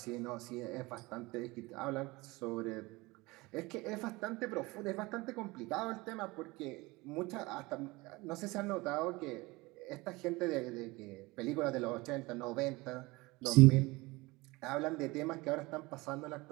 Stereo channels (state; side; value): quieter; left; 22.6 dB